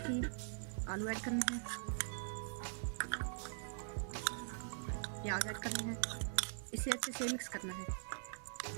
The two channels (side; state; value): left; silent; digital silence